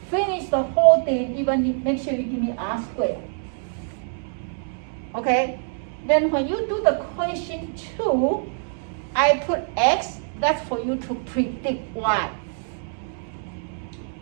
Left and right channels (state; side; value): silent; left; 62 dB below the other